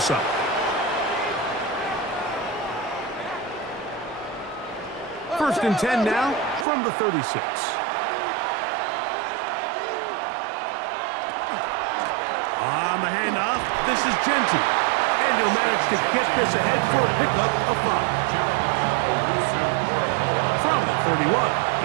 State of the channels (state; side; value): drops out; left; at 6.7 s